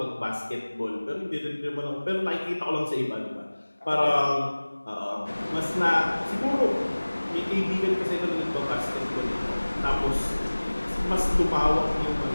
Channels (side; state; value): both; inverted; correlation -1.00